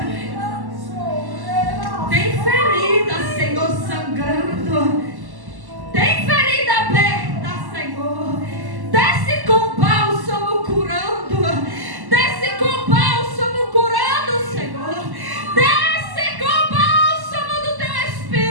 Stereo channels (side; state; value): left; late; 1.1 ms